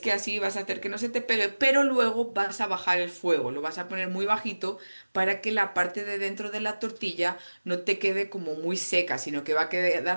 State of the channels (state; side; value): inverted; both; correlation -1.00